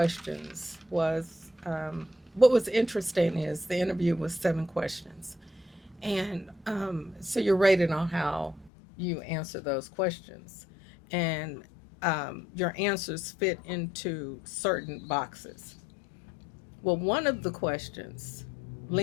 was what was interesting is the interview was 7 questions, and so you're rated on how you answer those questions, and your answers fit into certain boxes. Well, one of the questions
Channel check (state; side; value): drops out; right; at 8.7 s